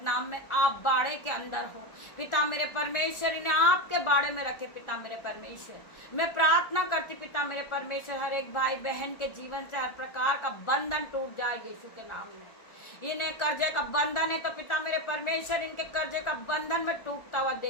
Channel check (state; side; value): late; right; 1.4 ms